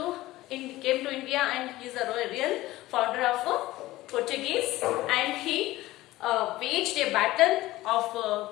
came to India, and he is the real founder of Portuguese, and he waged a battle of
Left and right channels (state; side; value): quieter; right; 17.3 dB